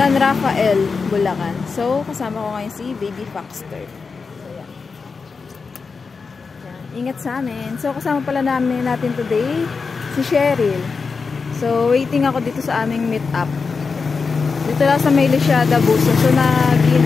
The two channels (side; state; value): right; quieter; 4.9 dB